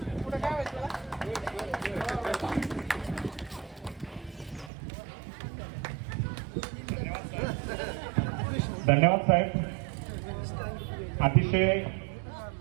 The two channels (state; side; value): drops out; left; at 4.7 s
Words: पुढे काय व्हायचं? धन्यवाद साहेब. अतिशय